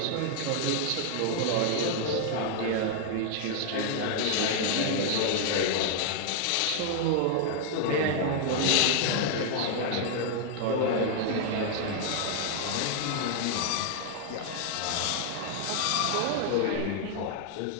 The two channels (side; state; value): both; different; correlation 0.00